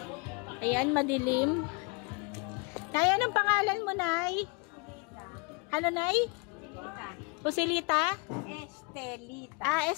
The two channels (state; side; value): quieter; right; 30.3 dB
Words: Ayan, madilim. Nay, anong pangalan mo, Nay? Ano, Nay? Pusilita? Estelita.